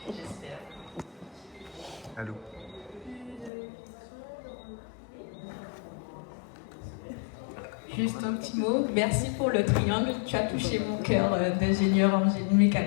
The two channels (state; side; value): drops out; right; at 3.5 s